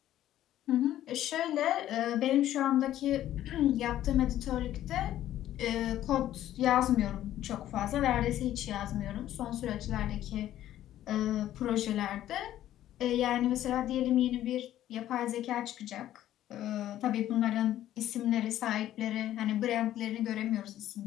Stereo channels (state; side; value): quieter; right; 12.7 dB